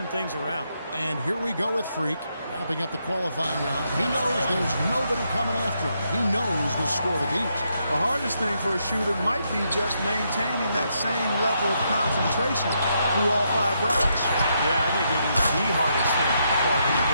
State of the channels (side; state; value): both; inverted; correlation -0.78